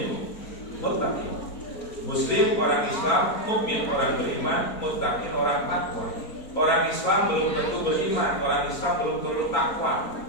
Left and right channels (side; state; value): right; late; 4.4 ms